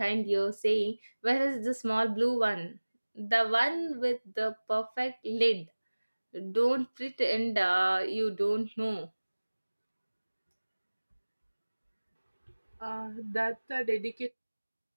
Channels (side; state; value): both; inverted; correlation -1.00